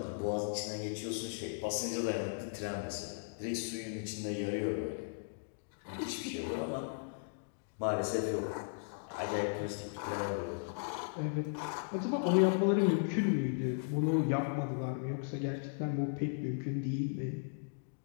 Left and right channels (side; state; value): right; silent; digital silence